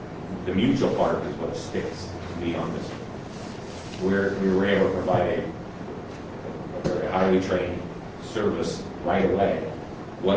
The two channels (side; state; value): both; identical; correlation 1.00